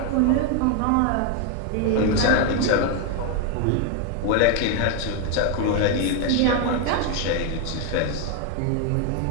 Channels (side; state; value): both; different; correlation 0.01